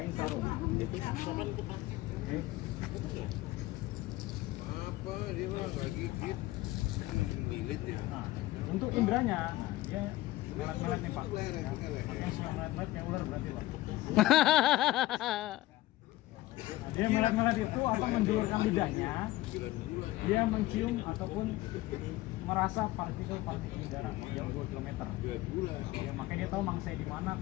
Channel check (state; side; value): quieter; right; 17.3 dB